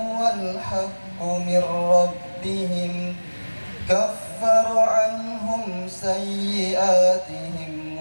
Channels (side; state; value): both; inverted; correlation -1.00